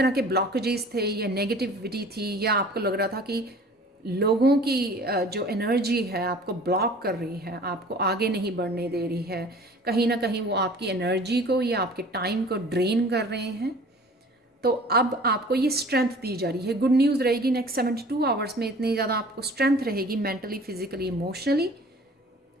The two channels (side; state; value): both; normal; correlation 0.47